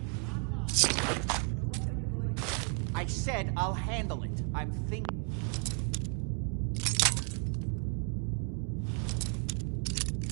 not mine. So what are you going to do? I said I'll handle it. I'm thinking...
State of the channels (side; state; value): left; quieter; 38.5 dB